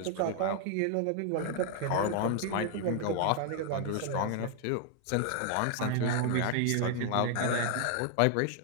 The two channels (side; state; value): both; different; correlation 0.00